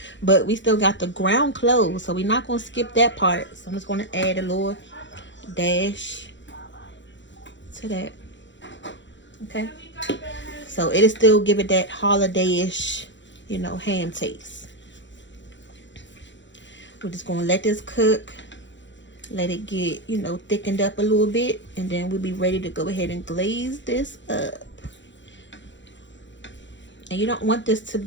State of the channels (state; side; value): late; right; 0.54 ms